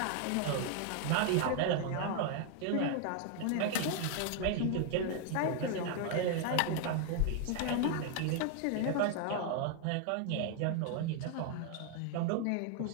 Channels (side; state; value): both; different; correlation 0.00